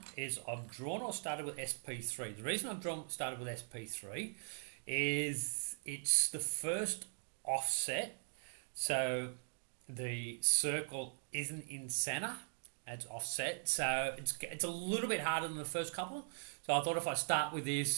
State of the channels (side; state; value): left; silent; digital silence